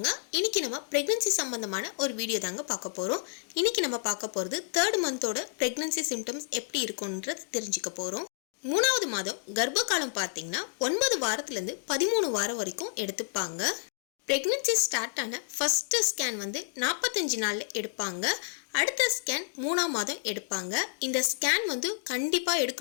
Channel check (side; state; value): right; silent; digital silence